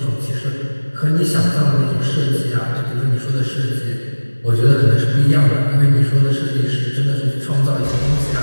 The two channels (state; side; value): inverted; both; correlation -1.00